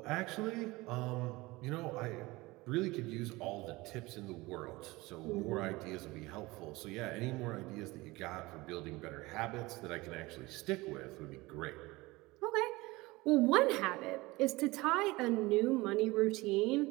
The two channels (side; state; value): left; quieter; 21.4 dB